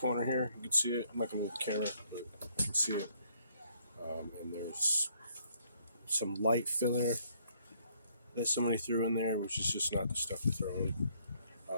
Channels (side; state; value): both; inverted; correlation -0.66